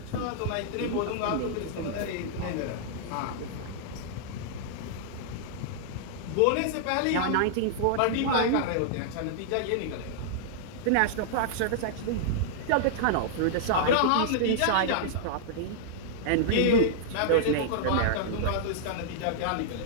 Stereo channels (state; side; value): different; both; correlation -0.01